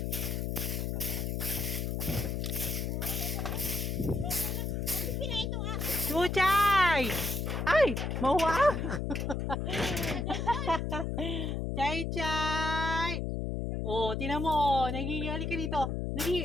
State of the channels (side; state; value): left; noise; hum, 1 dB below the sound